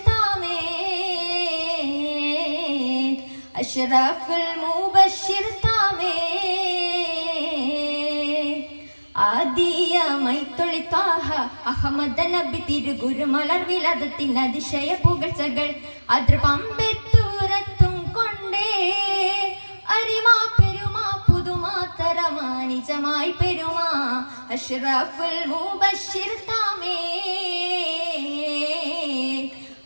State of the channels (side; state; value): both; inverted; correlation -1.00